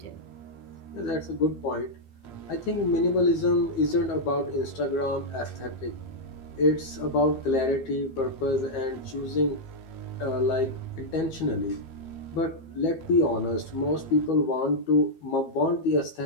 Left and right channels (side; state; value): right; late; 12 ms